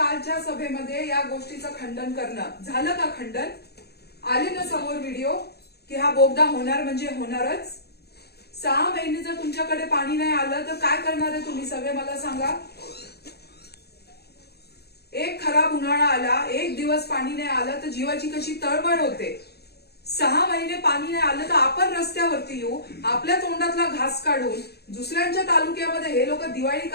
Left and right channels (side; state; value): right; late; 0.47 ms